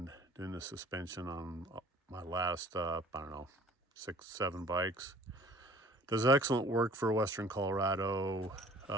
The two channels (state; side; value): normal; both; correlation 0.50